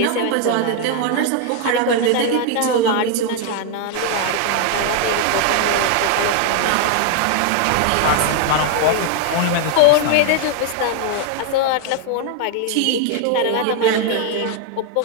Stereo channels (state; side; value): different; both; correlation 0.00